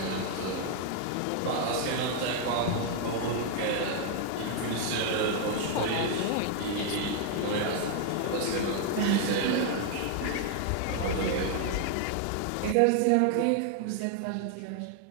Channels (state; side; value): different; both; correlation 0.00